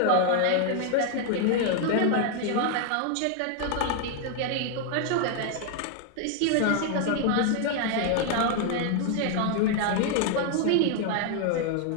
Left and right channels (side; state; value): both; different; correlation 0.00